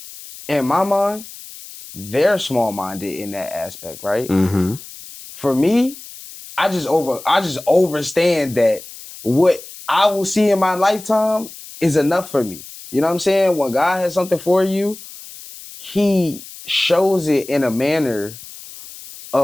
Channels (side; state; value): left; noise; hiss, 16 dB below the sound